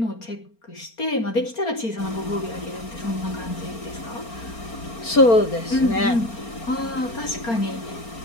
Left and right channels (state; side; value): late; right; 4.4 ms